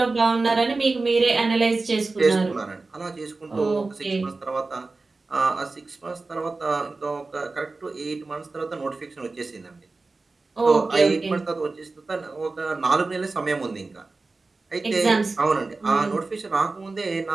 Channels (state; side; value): quieter; left; 3.6 dB